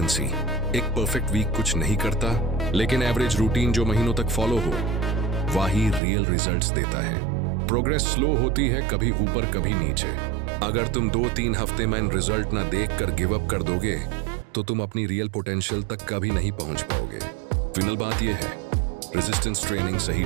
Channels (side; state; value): left; drops out; at 6.0 s